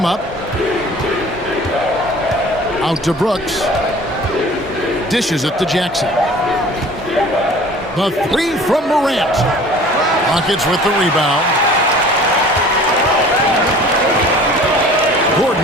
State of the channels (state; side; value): normal; both; correlation 0.46